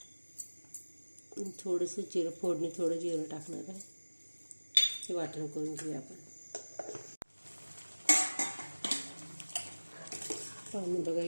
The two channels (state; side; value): inverted; both; correlation -1.00